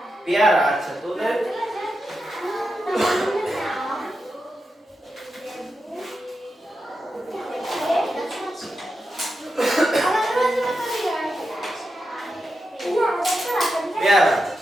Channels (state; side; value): normal; both; correlation 0.88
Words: পেয়ারা, আচ্ছা, তোদের পেয়ারা,